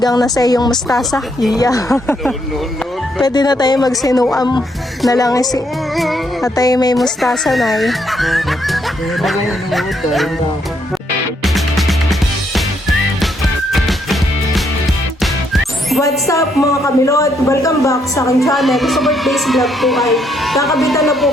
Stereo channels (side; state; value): both; normal; correlation 0.73